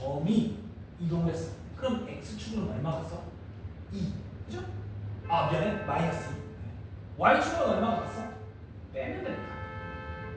아 미안해 마이너스 2. y축은 얼마가 갔어? 빼면 됩니다.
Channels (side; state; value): both; identical; correlation 1.00